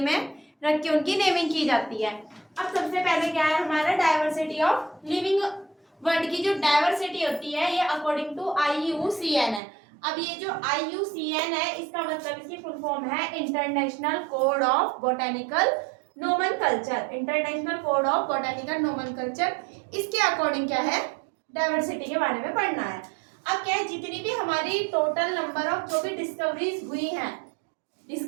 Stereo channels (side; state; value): left; drops out; at 9.6 s